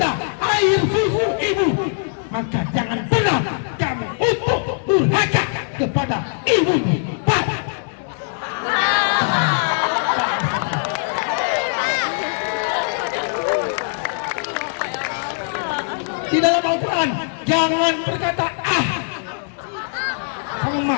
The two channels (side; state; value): right; silent; 65 dB below the other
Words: air susu ibu. Maka jangan pernah kamu untuk durhaka kepada ibumu. Di dalam Al-Quran jangan berkata sama